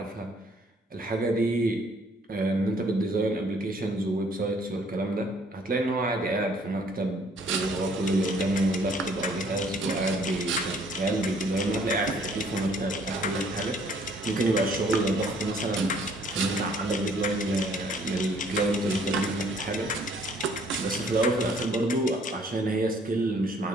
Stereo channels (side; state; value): both; normal; correlation 0.61